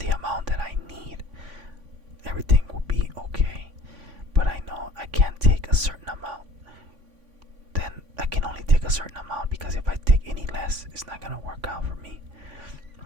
amount that I need. Everything will be okay, but I know I can't take a certain amount. Then I can only take a certain amount, because if I take any less, it's not gonna work out for me.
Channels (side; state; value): left; late; 3.5 ms